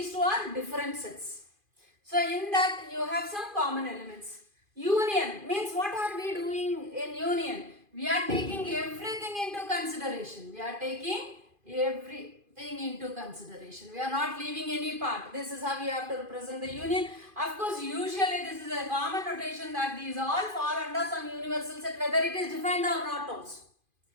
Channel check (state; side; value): late; left; 2.5 ms